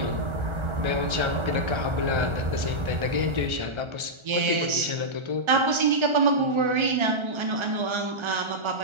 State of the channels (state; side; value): late; left; 1.3 ms